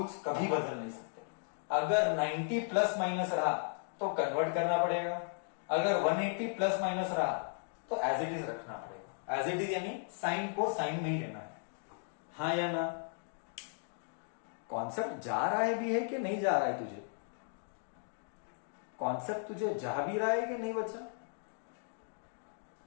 कभी बदल नहीं सकते, अगर 90 प्लस माइनस रहा तो कन्वर्ट करना पड़ेगा, अगर 180 प्लस माइनस रहा तो एज इट इज रखना पड़ेगा, एज इट इज यानी साइन को साइन में ही लेना है, हाँ या ना, कॉन्सेप्ट जा रहा है भी है कि नहीं जा रहा है तुझे, कॉन्सेप्ट तुझे जा भी रहा है कि नहीं बच्चा,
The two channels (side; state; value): right; silent; digital silence